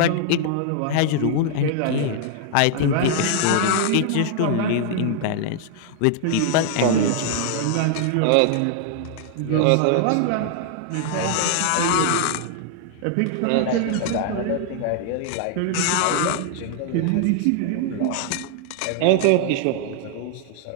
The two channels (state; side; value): different; both; correlation 0.00